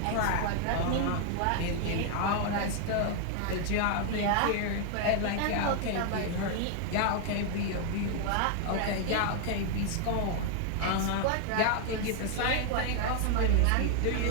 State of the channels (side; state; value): both; different; correlation 0.00